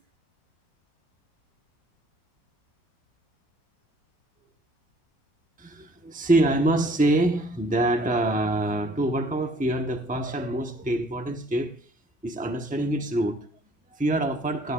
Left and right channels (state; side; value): normal; both; correlation 0.58